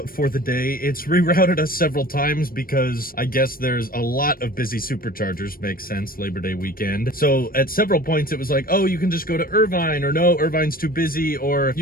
for the day. It's rerouted us several times because I guess there's a lot of busy superchargers. Makes sense, Labor Day weekend. So at several points it was like, oh, you can just go to Irvine, or no, Irvine's too busy, or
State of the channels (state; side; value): late; right; 0.42 ms